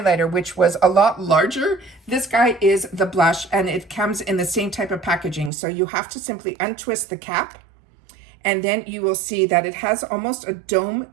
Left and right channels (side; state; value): left; drops out; at 5.5 s